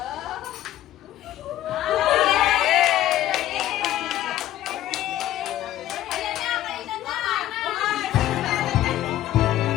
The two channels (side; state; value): right; quieter; 13.5 dB